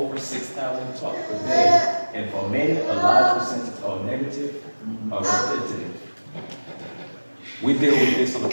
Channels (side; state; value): both; inverted; correlation -1.00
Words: 6,000 thoughts per day, and for many, a large percentage are negative or repetitive. We deal with this on a